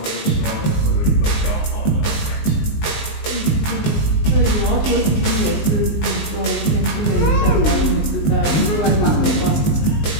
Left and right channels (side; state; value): right; late; 19 ms